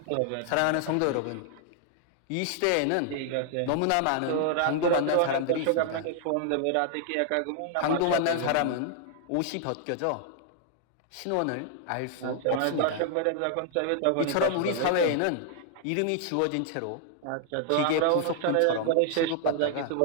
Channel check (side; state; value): both; different; correlation 0.00